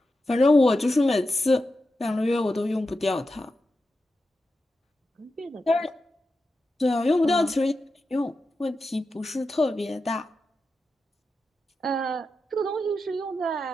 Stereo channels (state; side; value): normal; both; correlation 0.90